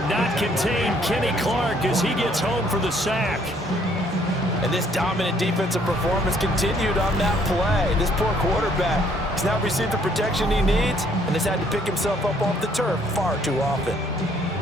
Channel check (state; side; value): normal; both; correlation 0.64